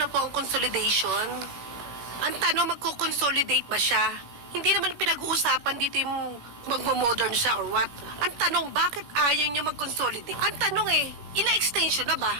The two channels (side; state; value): left; late; 17 ms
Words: po ang consolidation? Ang tanong, magko-consolidate ba siya? Hindi naman pinag-uusapan dito yung magmo-modern siya or what. Ang tanong, bakit ayaw niya mag-consolidate? Ang tanong ilang extension na